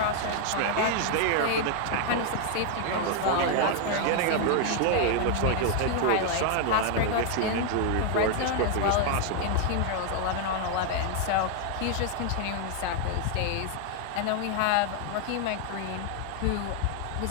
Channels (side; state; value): both; different; correlation 0.00